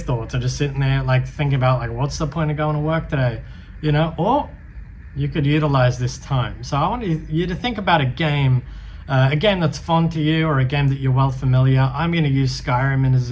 thoughts or just sitting there thinking about what's the point of going to work today, or you could utilize this time. So I want you to think about a game that's fun to you, or a game that you're well familiar. I'm going to use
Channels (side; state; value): both; identical; correlation 1.00